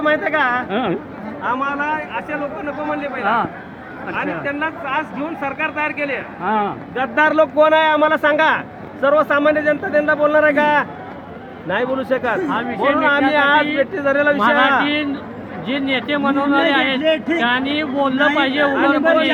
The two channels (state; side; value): identical; both; correlation 1.00